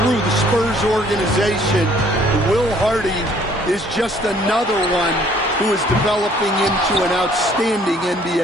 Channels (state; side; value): normal; both; correlation 0.60